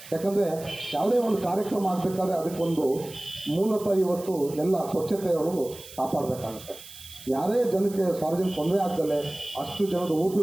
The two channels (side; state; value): right; noise; hiss, 17 dB below the sound